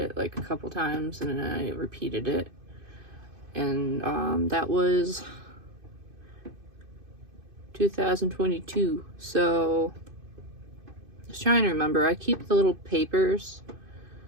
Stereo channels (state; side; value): late; left; 2.5 ms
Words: like a couple times, and then I repeated it, and that was 2022. So I was trying to remember. I keep the little papers,